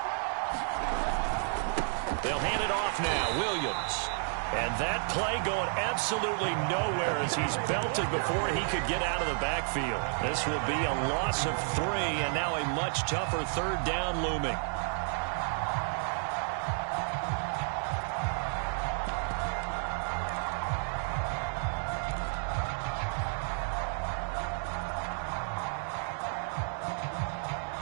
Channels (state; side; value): silent; left; 57 dB below the other